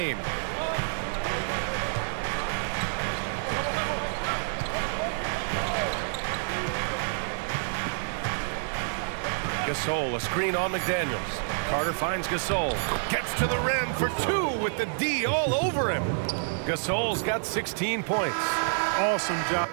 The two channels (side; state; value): left; silent; digital silence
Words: Gasol, a screen on McDaniels. Carter finds Gasol. Gets to the rim for 2 with the D all over him. Gasol's got 16 points. Awesome job.